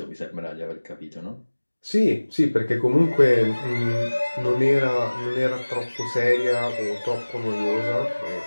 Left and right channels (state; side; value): inverted; both; correlation -1.00